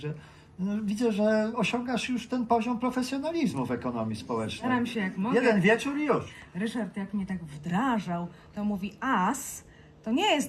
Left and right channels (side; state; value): both; identical; correlation 1.00